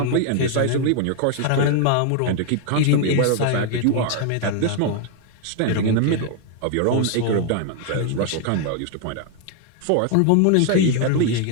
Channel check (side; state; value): both; different; correlation 0.00